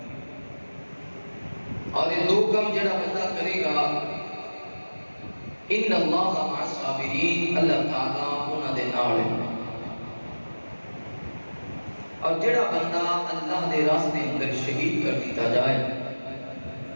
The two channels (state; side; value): inverted; both; correlation -1.00